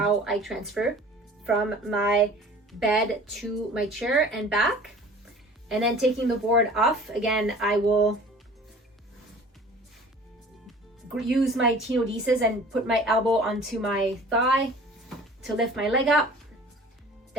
I transfer from my bed to my chair and back. And then taking the board off, again, I will use my tenodesis and put my elbow onto my thigh to lift my leg up.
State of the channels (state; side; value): normal; both; correlation 0.46